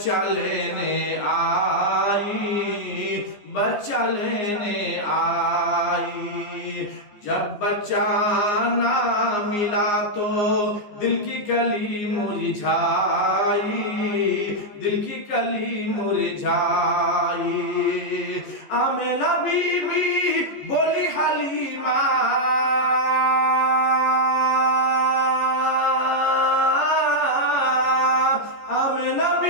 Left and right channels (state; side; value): late; right; 15 ms